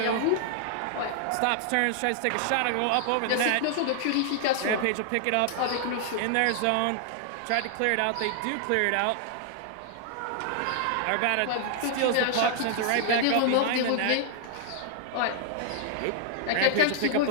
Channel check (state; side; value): different; both; correlation 0.00